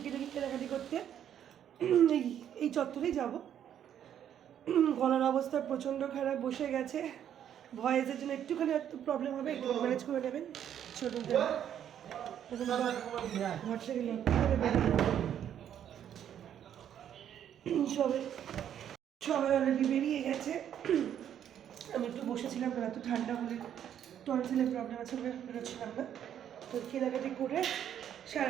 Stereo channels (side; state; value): left; quieter; 9.8 dB